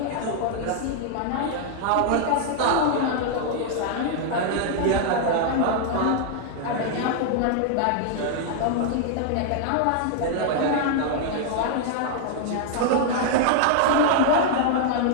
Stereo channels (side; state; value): both; different; correlation -0.01